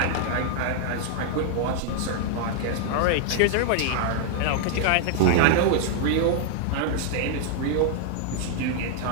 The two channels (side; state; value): both; different; correlation -0.01